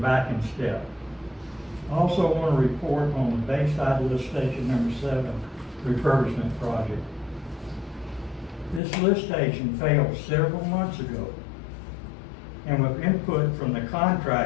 in step. I also want to report on the Bayside Lift Station number 7 refurbishment project. This lift station failed several months ago, and with input from the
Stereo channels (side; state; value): right; drops out; at 8.8 s